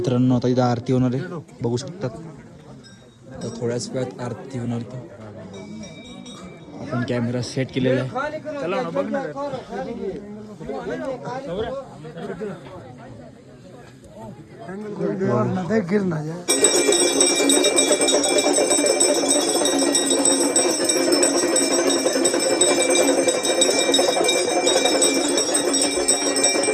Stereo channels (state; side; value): identical; both; correlation 1.00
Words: आता इथं आरती होणार आहे, बघू शकतात. तर थोड्याच वेळात आरती होणार आहे. आपण कॅमेरा सेट केलेला आहे. चला ना बघ ना.